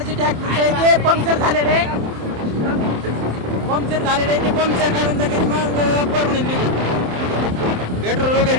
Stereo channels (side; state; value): left; late; 27 ms